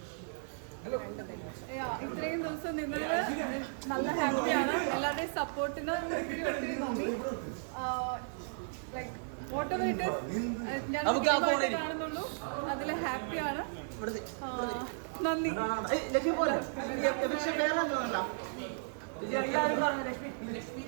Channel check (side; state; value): left; silent; digital silence